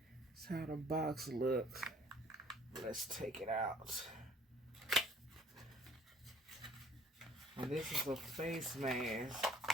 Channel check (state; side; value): normal; both; correlation 0.56